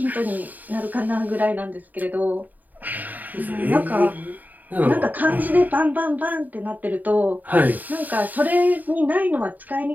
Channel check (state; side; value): late; left; 0.083 ms